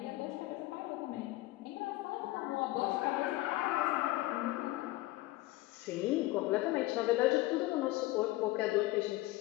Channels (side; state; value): right; quieter; 18.2 dB